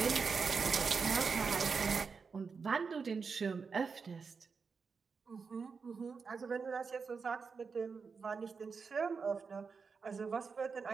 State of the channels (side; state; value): left; quieter; 5.3 dB